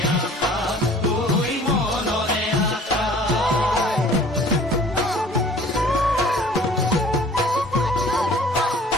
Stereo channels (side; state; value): both; normal; correlation 0.50